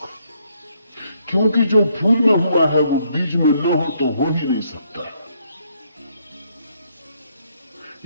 क्योंकि जो फूल में हुआ है वो बीज में न हो तो हो ही नहीं सकता।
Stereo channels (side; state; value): both; inverted; correlation -0.72